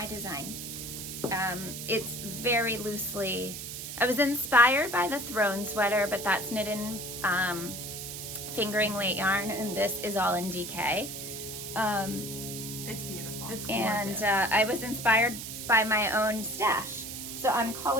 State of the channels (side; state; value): right; noise; hiss, 8 dB below the sound